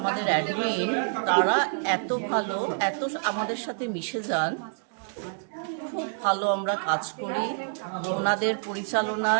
আমাদের অ্যাডমিন, তারা এত ভালো, এত আমাদের সাথে মিশে যান, খুব ভালো আমরা কাজ করি। ওনাদের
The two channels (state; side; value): silent; left; digital silence